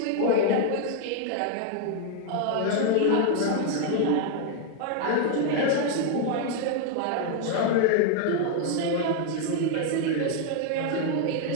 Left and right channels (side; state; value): both; different; correlation 0.00